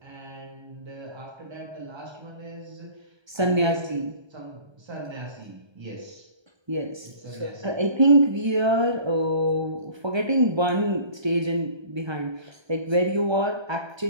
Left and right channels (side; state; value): left; late; 1.3 ms